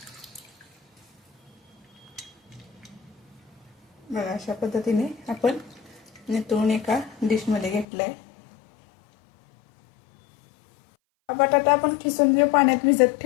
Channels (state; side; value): drops out; right; at 7.9 s